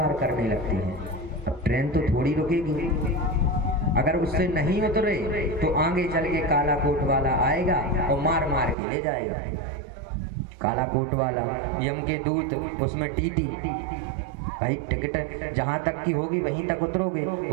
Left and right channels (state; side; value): drops out; left; at 8.8 s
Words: करने लगते हैं। अब ट्रेन तो थोड़ी रुकेगी, अगर उससे नहीं उतरे तो आगे चल के काला कोट वाला आएगा और मार मार के ले जाएगा। काला कोट वाला, यम के दूत, उसमें टीटी, भाई टिकट जहाँ तक की होगी वहीं तक उतरोगे,